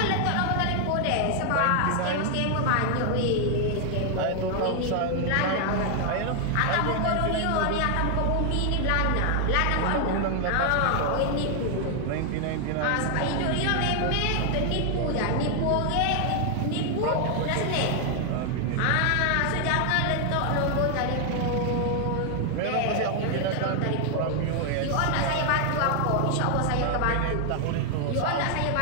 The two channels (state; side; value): different; both; correlation 0.00